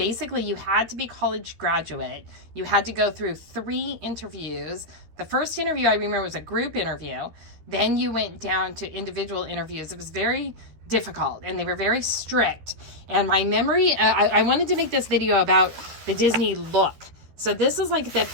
you had to be a college graduate. You had to go through 3 interviews. The first interview I remember was a group interview. Then you went down to individual interviews. It was very difficult and they were very strict. And my memory, I wanted to make this video about the Disney look. So this is like the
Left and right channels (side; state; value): left; late; 13 ms